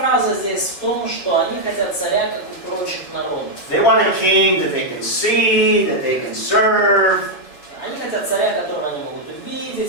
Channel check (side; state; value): right; late; 7.1 ms